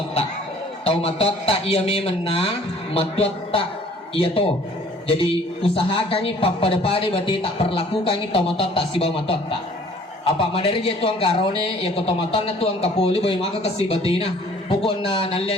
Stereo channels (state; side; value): normal; both; correlation 0.54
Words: tomatota ia memang matota ia to. Jadi usahakan ni pada berarti tak perlakukan ni tomatota si bawa matota. Apa madari je tuang karone ya ko tomatona tuang kapuli boy maka kasi batina. Pukon na